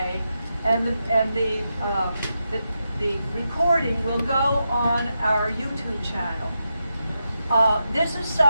and the recording will go on our YouTube channel. This is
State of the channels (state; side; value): inverted; both; correlation -0.87